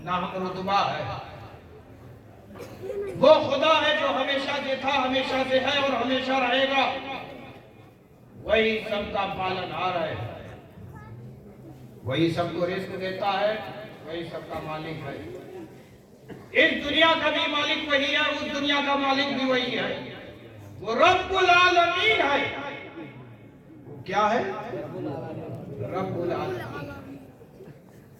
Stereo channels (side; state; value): both; identical; correlation 1.00